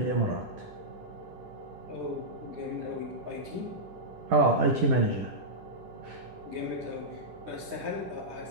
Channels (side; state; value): left; late; 10 ms